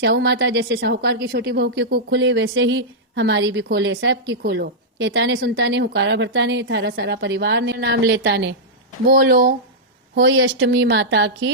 माता जैसे साहूकार की छोटी बहू की कूख खुली, वैसे ही हमारी भी खोले, सब की खोलो। कहता ने सुनता ने, हुकारा भरता ने, थारा सारा परिवार ने नाम लेता ने। बोलो होई अष्टमी माता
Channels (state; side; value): normal; both; correlation -0.10